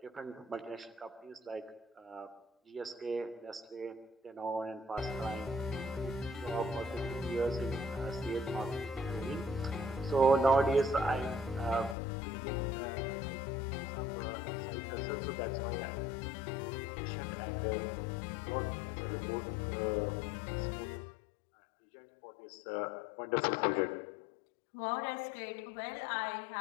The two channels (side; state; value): right; drops out; at 12.0 s